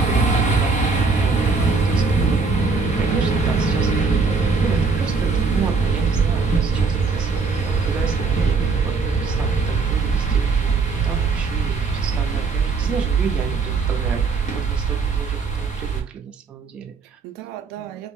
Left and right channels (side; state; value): left; quieter; 4.4 dB